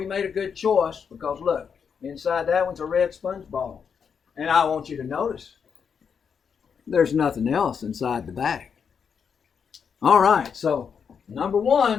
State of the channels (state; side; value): quieter; right; 6.7 dB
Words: made a good choice because look, inside that one's a red sponge ball. And I want you to notice there's nothing else inside the bag. All right, so number